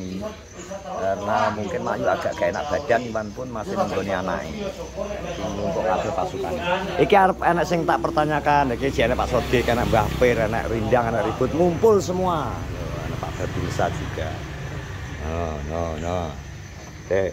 karena mungkin Mayu agak gak enak badan, Iwan pun masih nunggoni anaknya untuk kabel pasukan. Iki arep enak sing tak pertanyakan, iki jane Pak Sodik, anak Mbah Pir, anak Rindang, anak Ribut ngumpul semua. Anak Pak Babinsa juga. No.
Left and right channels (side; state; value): both; identical; correlation 1.00